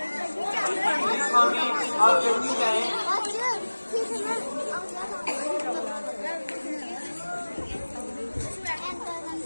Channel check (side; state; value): both; inverted; correlation -1.00